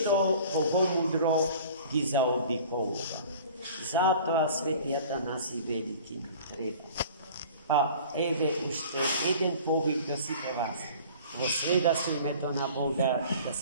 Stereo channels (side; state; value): both; inverted; correlation -0.45